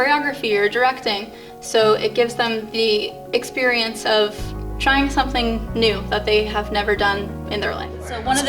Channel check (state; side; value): identical; both; correlation 1.00